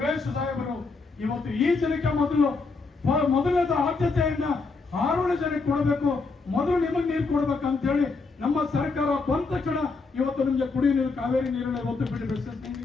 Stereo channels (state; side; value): quieter; right; 4.1 dB